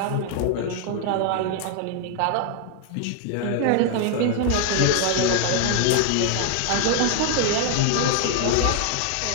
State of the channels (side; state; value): both; different; correlation 0.00